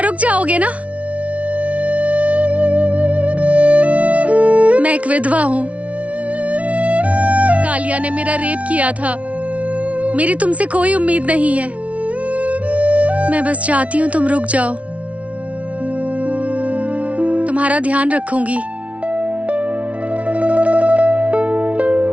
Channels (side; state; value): left; late; 0.065 ms